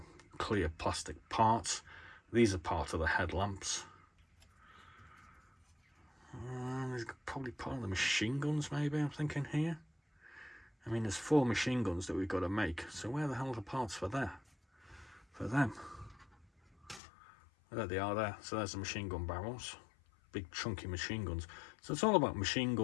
clear plastic parts. These are part of the headlamps. There's probably part of the machine guns, maybe, I'm thinking here. I mean, there's 4 machine guns that we've got to make, so where the hell are the parts for them? There they are there. So there's the machine gun barrels. Big chunky machine guns. So it's all about machine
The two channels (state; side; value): drops out; right; at 17.0 s